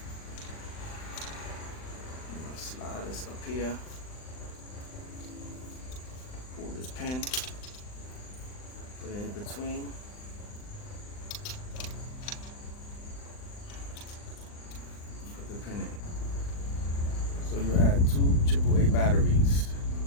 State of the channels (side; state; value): right; late; 39 ms